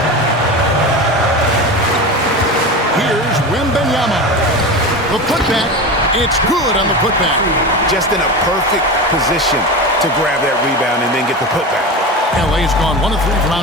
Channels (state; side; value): normal; both; correlation 0.26